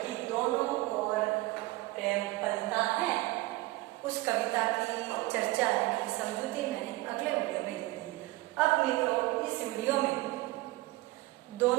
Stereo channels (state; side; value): quieter; left; 20.2 dB